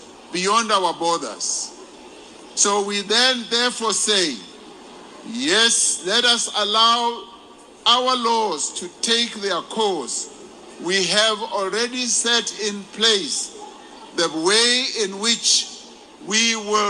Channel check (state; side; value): identical; both; correlation 1.00